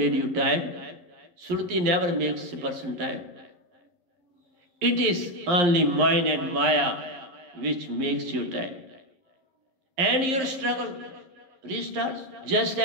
you tired? Surti never makes a person tired. It is only mind and Maya which makes you tired. And your struggle restarts just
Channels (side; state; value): left; late; 11 ms